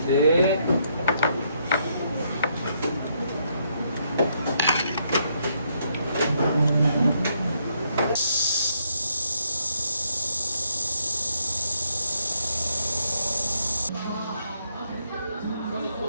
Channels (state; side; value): inverted; both; correlation -0.75